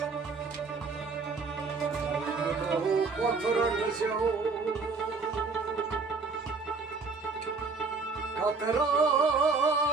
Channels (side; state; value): left; quieter; 4.4 dB